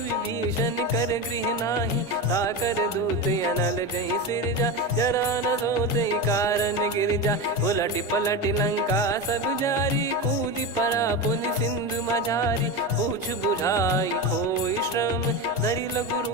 कर गृह नाही। ताकर दूत अनल जय सिरजा जरा न सोते कारण गिरजा। उलट पलट लंका सब जारी कूदी परा पुनि सिंधु मझारी। पूछ बुझाई खोई श्रम धरि लघु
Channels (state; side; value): normal; both; correlation 0.20